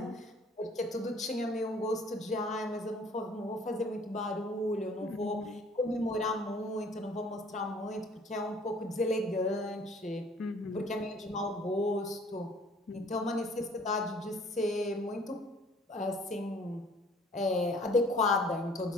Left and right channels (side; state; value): both; normal; correlation 0.55